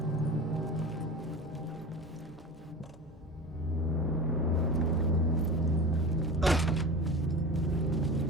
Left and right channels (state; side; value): normal; both; correlation 0.31